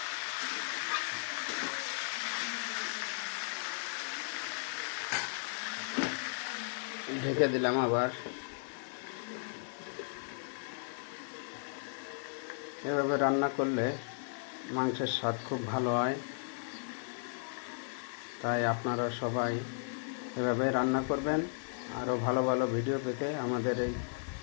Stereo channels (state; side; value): silent; right; digital silence